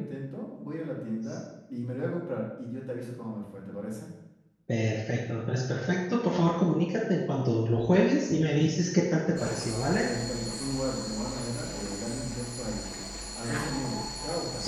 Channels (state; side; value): identical; both; correlation 1.00